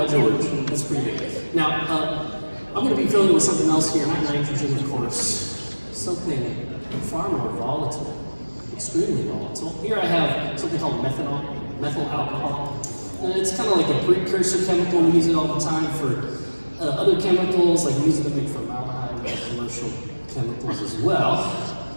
George. That's pretty big. Now, I'm going to be filling with something else here, not nitrogen, of course. Something far more volatile, extremely volatile. Here I have something called methanol, methyl alcohol. And it's kind of like a precursor chemical. We use it all the time for other chemicals, like we use it to make formaldehyde and commercial chemicals as well.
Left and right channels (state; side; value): inverted; both; correlation -1.00